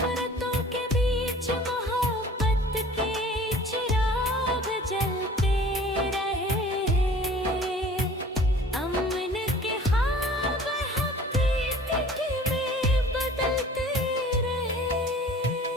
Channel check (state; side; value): normal; both; correlation 0.47